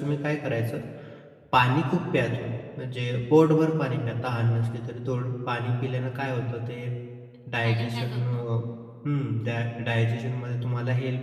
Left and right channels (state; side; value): identical; both; correlation 1.00